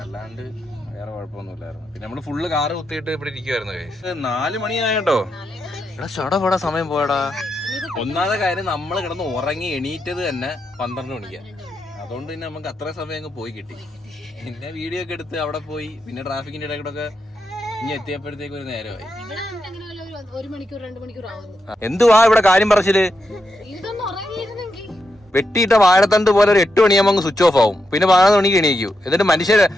അല്ലാണ്ട് വേറെ കുഴപ്പമൊന്നുമില്ലായിരുന്നു. പിന്നെ നമ്മള് ഫുള്ള് കാറ് കുത്തിയിട്ട് ഇവിടെ ഇരിക്കുവായിരുന്നു. 4 മണിയായിട്ടോ. എടാ ചടപടാ സമയം പോയടാ. ഒന്നാമത്തെ കാര്യം, നമ്മള് കിടന്ന് ഉറങ്ങി എണീറ്റത് തന്നെ 12 മണിക്കാ. അതുകൊണ്ട് പിന്നെ നമുക്ക് അത്ര സമയം അങ്ങ് പോയി കിട്ടി. പിന്നെ വീഡിയോ ഒക്കെ എടുത്ത് അവിടെ പോയി, പിന്നെ ട്രാഫിക്കിന്റെ ഇടയ്ക്കൂടെ ഇനി എത്തിയപ്പോഴത്തേക്ക് ഒരു നേരമായി. 1 മണിക്കൂർ 2 മണിക്കൂർ ആവുന്നു. എന്തുവാ ഇവിടെ കാര്യം പറച്ചില്? വെട്ടിയിട്ട വാഴത്തണ്ട് പോലെ ഒരു 8 മണിയാകുമ്പോൾ അങ്ങ് സ്വിച്ച് ഓഫ് ആവും. പിന്നെ 11 മണിക്ക് എണീക്കൂ. എന്നിട്ട് മനുഷ്യര്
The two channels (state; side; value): normal; both; correlation 0.85